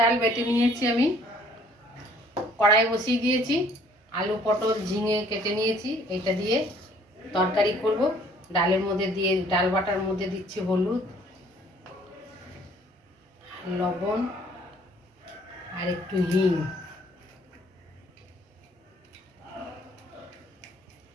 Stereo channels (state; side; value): normal; both; correlation 0.59